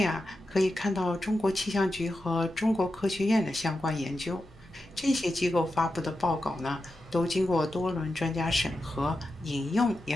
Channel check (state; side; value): noise; left; hum, 27 dB below the sound